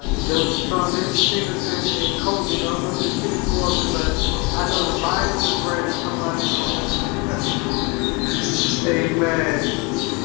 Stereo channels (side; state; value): right; quieter; 26.3 dB